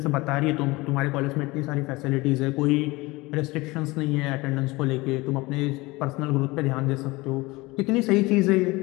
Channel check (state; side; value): quieter; right; 22.2 dB